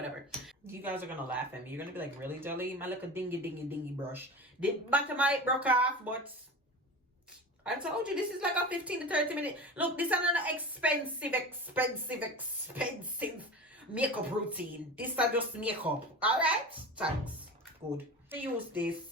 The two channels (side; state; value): both; normal; correlation 0.31